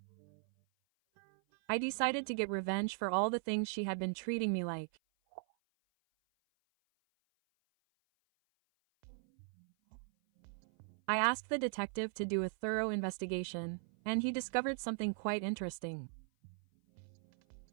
I decided to get revenge for all the things she had been treating me like. I asked the detective to do a thorough investigation, and he discovered something quite interesting.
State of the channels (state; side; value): silent; left; 52 dB below the other